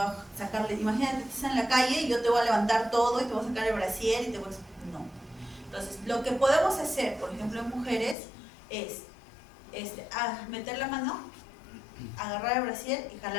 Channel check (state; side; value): drops out; right; at 8.2 s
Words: a sacarle, imagínate que estás en la calle y yo te voy a levantar todo y te voy a sacar el brasier y te voy a... No. Entonces, lo que podemos hacer, por ejemplo, en mujeres, es meter la mano, agarrar el brasier y